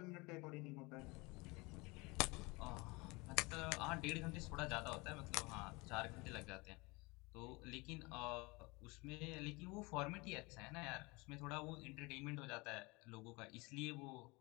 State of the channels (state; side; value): quieter; right; 25.4 dB